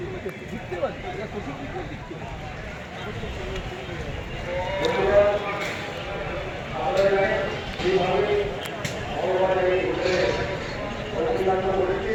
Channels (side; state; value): both; identical; correlation 1.00